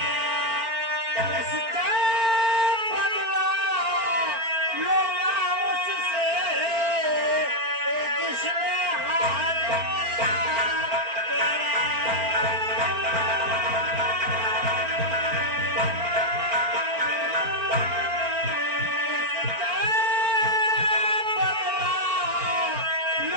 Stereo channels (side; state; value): left; late; 4.4 ms